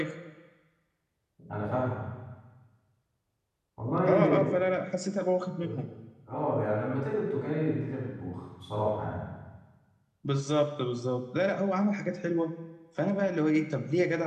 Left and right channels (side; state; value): both; identical; correlation 1.00